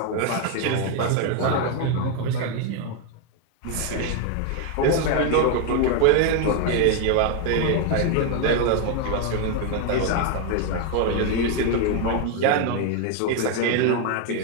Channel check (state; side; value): different; both; correlation 0.01